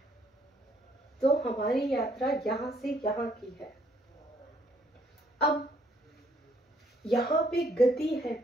तो हमारी यात्रा यहाँ से यहाँ की है। अब यहाँ पे गति है,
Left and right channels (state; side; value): normal; both; correlation 0.67